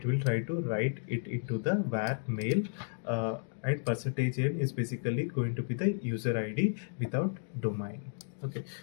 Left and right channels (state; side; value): silent; right; digital silence